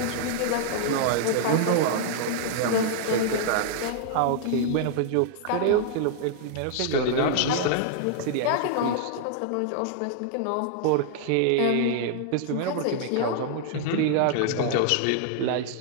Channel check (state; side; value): different; both; correlation -0.01